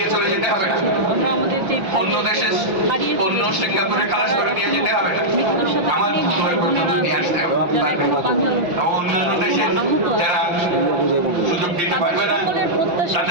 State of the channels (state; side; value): late; left; 5.9 ms